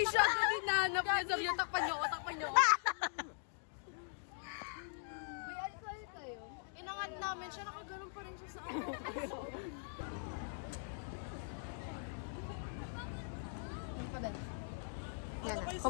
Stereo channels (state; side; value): silent; right; digital silence